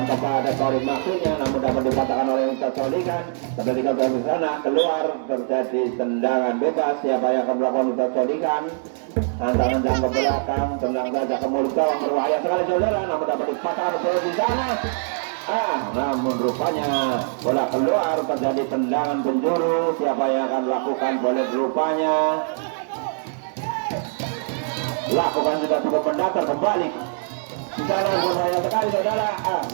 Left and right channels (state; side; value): silent; left; digital silence